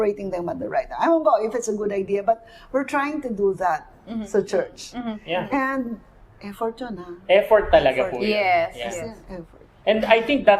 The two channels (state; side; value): identical; both; correlation 1.00